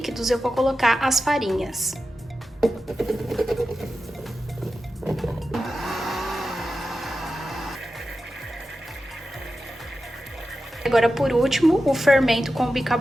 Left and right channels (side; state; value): both; normal; correlation 0.92